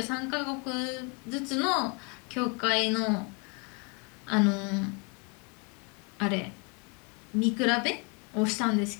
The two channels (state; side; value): quieter; right; 33.5 dB